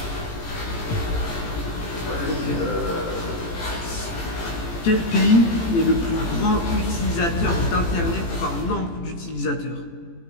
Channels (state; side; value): late; right; 18 ms